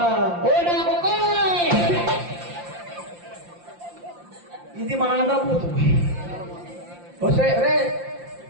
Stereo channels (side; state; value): left; late; 5.7 ms